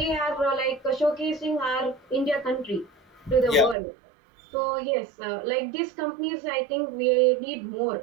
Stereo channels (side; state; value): left; drops out; at 3.8 s